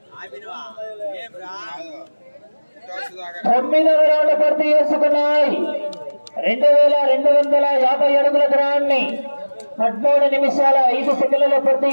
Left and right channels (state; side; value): inverted; both; correlation -1.00